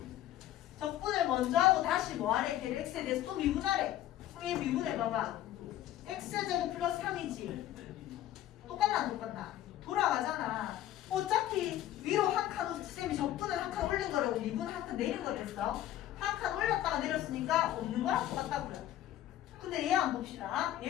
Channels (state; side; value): quieter; right; 13.0 dB